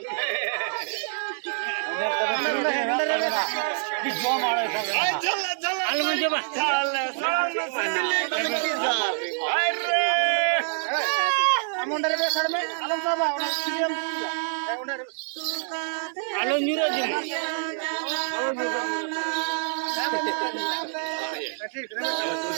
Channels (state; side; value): silent; left; 61 dB below the other